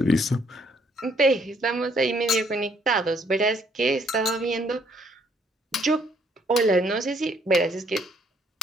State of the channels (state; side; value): normal; both; correlation 0.67